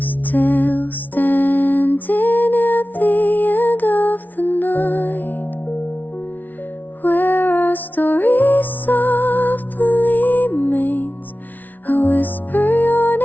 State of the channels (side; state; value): right; late; 0.081 ms